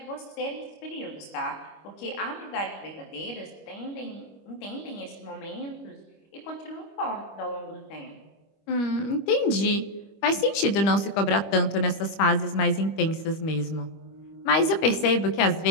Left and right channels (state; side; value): late; right; 25 ms